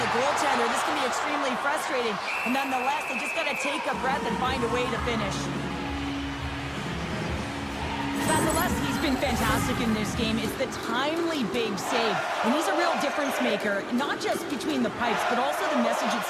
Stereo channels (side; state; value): both; identical; correlation 1.00